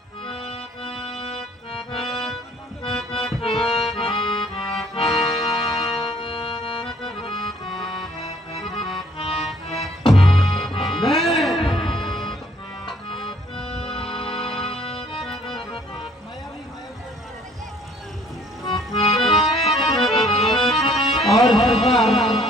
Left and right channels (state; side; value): normal; both; correlation 0.60